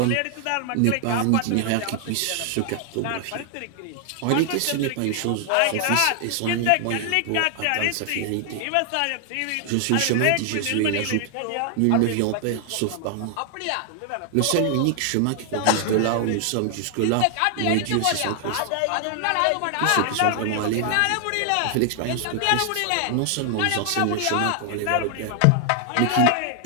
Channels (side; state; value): both; different; correlation 0.00